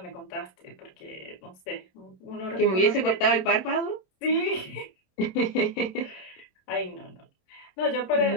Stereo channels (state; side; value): late; right; 27 ms